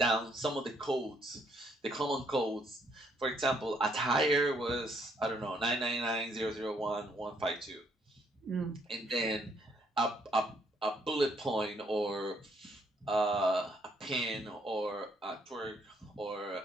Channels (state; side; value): normal; both; correlation 0.70